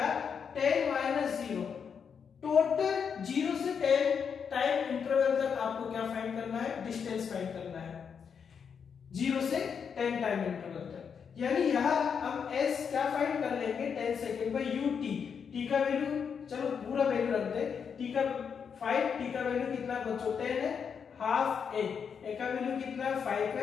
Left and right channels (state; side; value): quieter; right; 6.7 dB